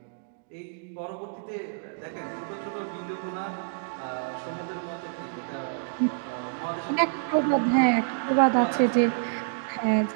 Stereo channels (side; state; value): left; silent; digital silence